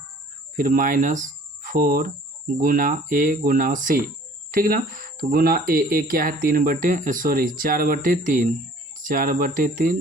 फिर -4 गुना a गुना c। ठीक ना, तो गुना a क्या है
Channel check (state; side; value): normal; both; correlation 0.53